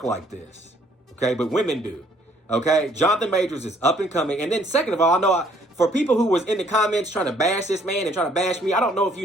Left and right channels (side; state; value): both; normal; correlation 0.63